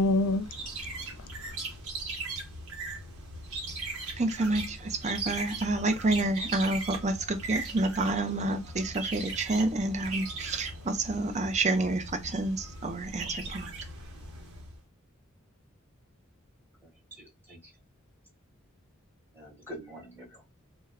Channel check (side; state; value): both; normal; correlation 0.54